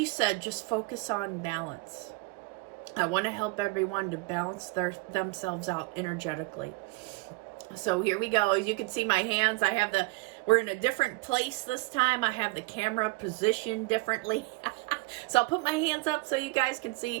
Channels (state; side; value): quieter; left; 24.8 dB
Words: said, just focus on balance. I want to help everyone to balance themselves out energetically. So here we go. As you can see my hands, we're in a different place this time. I have the camera positioned differently. So I'll put my hands up so you guys can